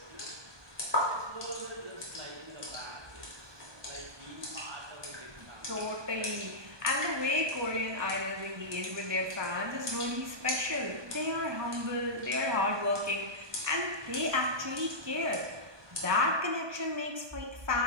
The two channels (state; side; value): late; left; 1.2 ms